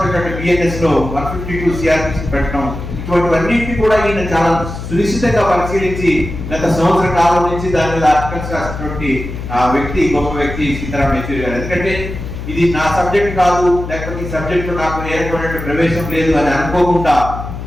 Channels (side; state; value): left; noise; hum, 8 dB below the sound